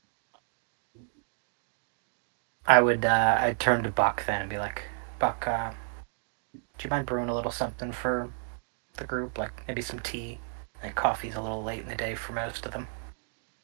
I'd turn to Buck then and be like, Buck, do you mind brewing a little something for the group? Like maybe some tea. Like coffee's a little late in the day for most of them.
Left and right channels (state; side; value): silent; left; digital silence